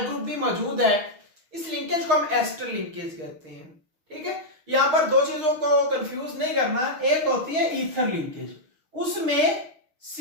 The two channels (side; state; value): left; late; 6.5 ms